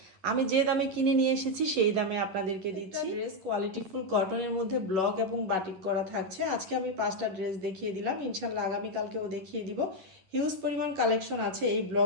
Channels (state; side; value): late; left; 10 ms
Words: আমি যে দামে কিনে নিয়ে এসেছি সেই দামে আপনাদেরকে দিচ্ছি। ড্রেস কোয়ালিটিফুল কটনের মধ্যে ব্লক এবং বাটিক করা থাকছে। আজকে আমি 5টা ড্রেস দেখিয়ে দিলাম, ইনশাল্লাহ আগামীকালকেও দেখিয়ে দিব। হিউজ পরিমাণ কালেকশন আছে এই